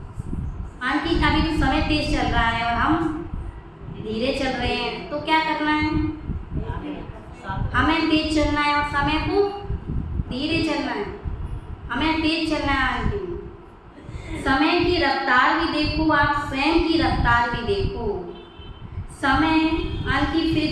आंटी अभी तो समय तेज चल रहा है और हम धीरे चल रहे हैं, तो क्या करना है? हमें तेज चलना है और समय को धीरे चलना है। हमें तेज चलना है आंटी। समय की रफ्तार भी देखो, आप स्वयं की रफ्तार भी देखो। समय आंटी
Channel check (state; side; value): identical; both; correlation 1.00